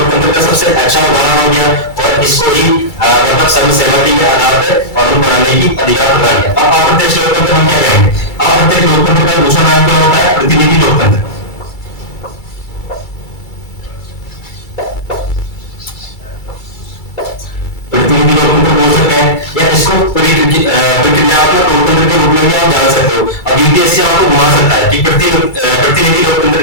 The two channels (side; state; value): right; late; 2.3 ms